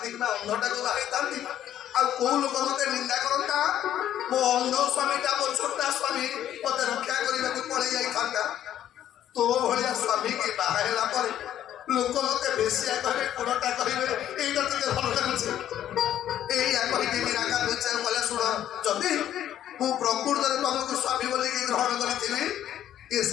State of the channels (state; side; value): quieter; right; 11.3 dB